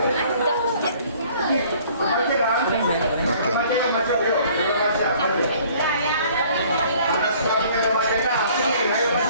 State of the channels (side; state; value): both; inverted; correlation -0.55